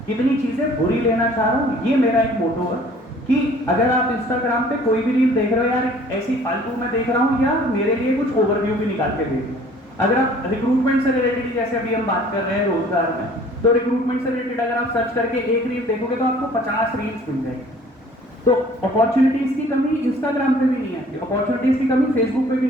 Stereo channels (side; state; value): both; normal; correlation 0.53